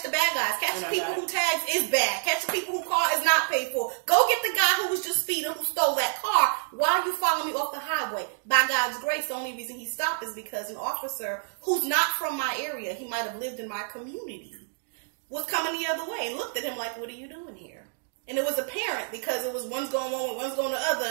the bad guys. Catch the people who tags is bad. Catch the people who car is not paid for. Go get the guy who was just speeding, who stole that car. Why are you following me off the highway? By God's grace, the only reason he stopped is because an officer who's not from my area, he might have lived in my community, was coming the other way and looked at him like, what are you doing here? And it was apparent because it was one's going one way, one's going the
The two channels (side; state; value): left; silent; digital silence